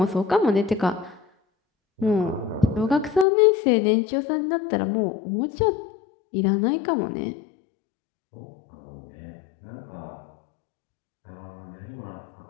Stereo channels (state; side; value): drops out; right; at 3.2 s